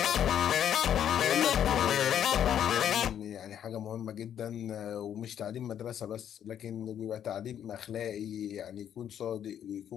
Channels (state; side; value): quieter; right; 9.7 dB